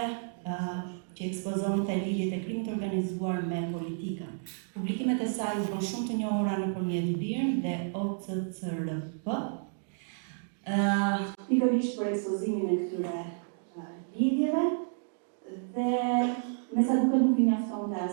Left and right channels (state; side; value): silent; left; digital silence